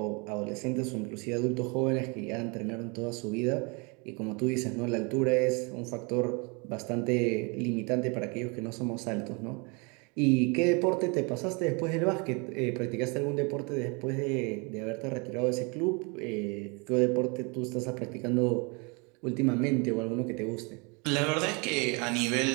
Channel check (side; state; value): left; quieter; 31.2 dB